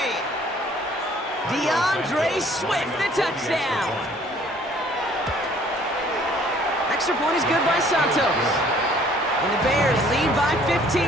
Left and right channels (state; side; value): normal; both; correlation 0.57